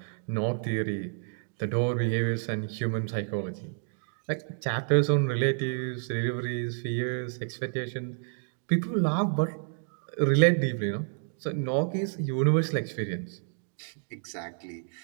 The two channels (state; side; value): silent; left; digital silence